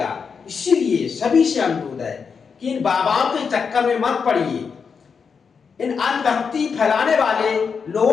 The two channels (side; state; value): right; quieter; 5.9 dB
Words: इसीलिए सभी से अनुरोध है कि इन बाबाओं के चक्कर में मत पड़िए, इन अंधभक्ति फैलाने वाले